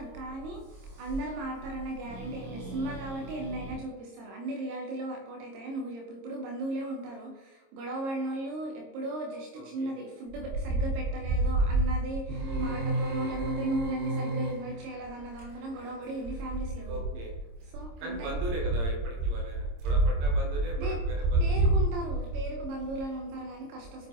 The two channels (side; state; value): left; late; 26 ms